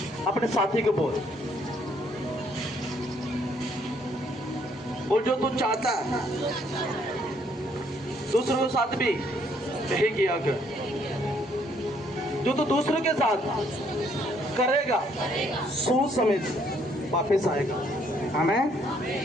अपने साथी को बोल जो तू चाहता है दूसरों के साथ भी यही किया कर। जो तू दूसरों के साथ करेगा सूद समेत वापस आएगा। आमीन।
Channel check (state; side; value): normal; both; correlation 0.67